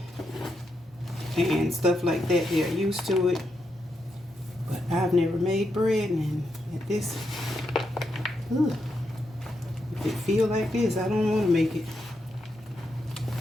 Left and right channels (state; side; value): normal; both; correlation 0.83